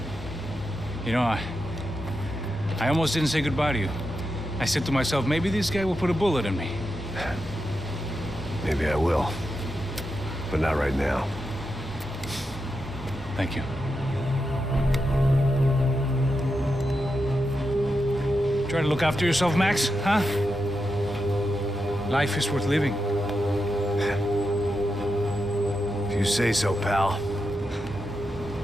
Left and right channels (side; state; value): both; normal; correlation 0.87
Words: You know, I almost didn't say goodbye to you. I said to myself, maybe this guy will put a bullet in me. Maybe I will. But not right now. Thank you. Try to look after yourself, Max, huh? Life is worth living. If you say so, pal.